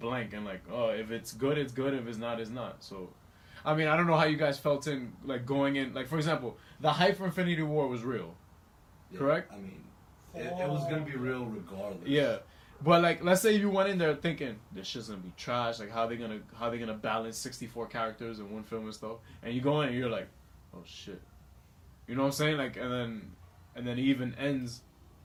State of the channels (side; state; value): both; identical; correlation 1.00